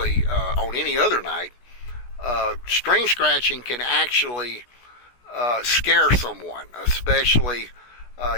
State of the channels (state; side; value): late; right; 16 ms